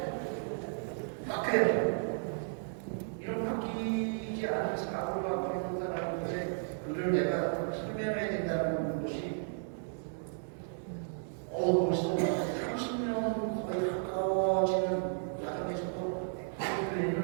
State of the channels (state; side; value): silent; left; digital silence